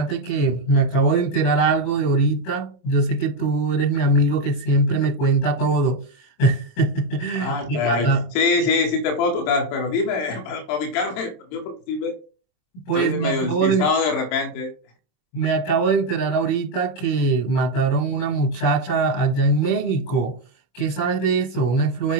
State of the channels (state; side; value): late; right; 26 ms